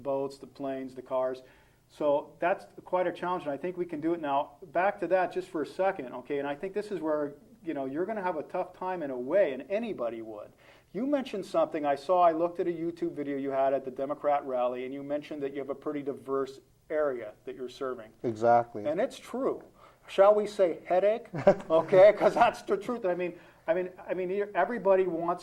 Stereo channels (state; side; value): identical; both; correlation 1.00